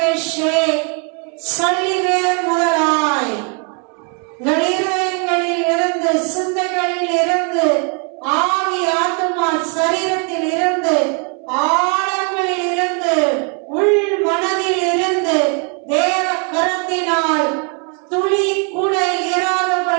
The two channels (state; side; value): quieter; left; 38.3 dB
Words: உங்கள் இருதயங்களில் இருந்து, சிந்தைகளில் இருந்து, ஆவி, ஆத்மா, சரீரத்தில் இருந்து, ஆழங்களில் இருந்து, உள் மனதில் இருந்து தேவ கரத்தினால் துளி கூட